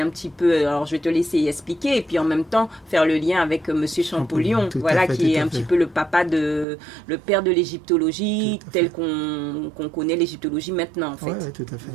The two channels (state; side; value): drops out; left; at 6.7 s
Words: petit peu... Alors, je vais te laisser expliquer. Et puis, en même temps, faire le lien avec Monsieur Champollion. Voilà, qui est un petit peu le père de l'égyptologie, tel qu'on connaît l'égyptologie maintenant, en fait. Oui, tout à fait.